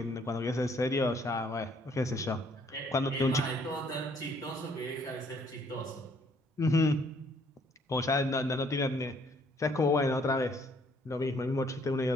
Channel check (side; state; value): both; normal; correlation 0.64